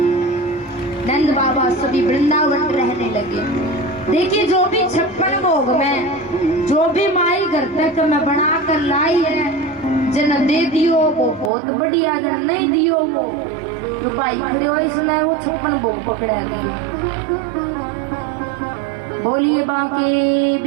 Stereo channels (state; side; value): drops out; left; at 11.5 s